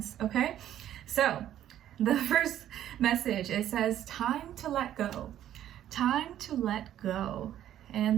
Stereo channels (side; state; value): left; quieter; 11.6 dB